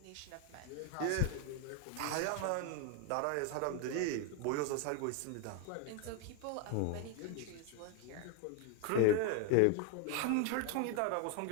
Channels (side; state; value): both; different; correlation 0.01